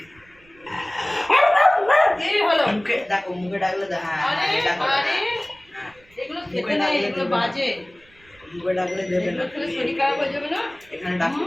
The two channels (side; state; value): right; noise; rumble, 29 dB below the sound